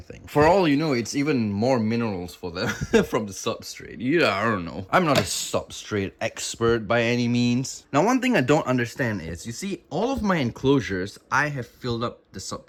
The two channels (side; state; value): both; identical; correlation 1.00